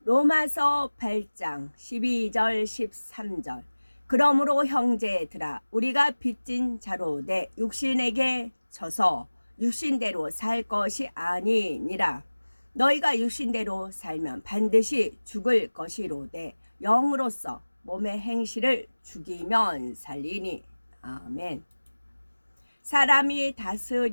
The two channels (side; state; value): both; inverted; correlation -1.00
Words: 로마서 8장 12절 13절. 그러므로 형제들아 우리가 빚진 자로 내 육신에게 져서 육신대로 살 것이 아니니라. 너희가 육신대로 살면 반드시 죽을 것이로되 영으로서 몸의 행실을 죽이면 살리니. 아멘. 사람이